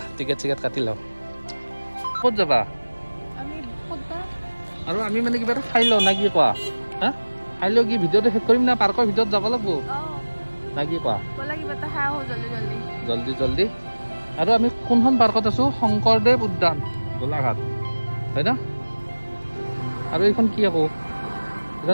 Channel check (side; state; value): both; inverted; correlation -1.00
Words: টিকেট চিকেট কাটি লওঁ ক'ত যাবা আৰু আমি মানে কিবা এটা খাই লওঁ না কি কোৱা হা খাই লওঁ কি ভিডিঅ'টো শেষ কৰিম না পাৰ্কৰ ভিতৰত যাব লাগিব না কি কোৱা জলদি আৰু আমি কোনখন পাৰ্কত আছো শংকৰদেৱ উদ্যান গোলাঘাট হয় না আৰু এইখন কি আকৌ